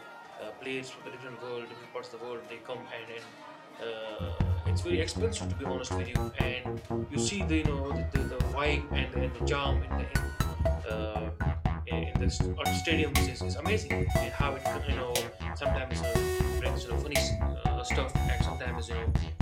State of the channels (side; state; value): both; identical; correlation 1.00